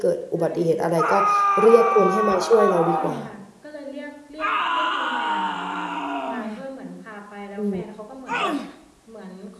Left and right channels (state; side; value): identical; both; correlation 1.00